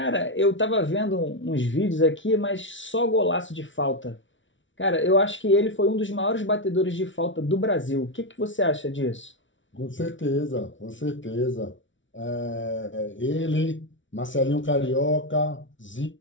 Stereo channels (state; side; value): late; right; 0.56 ms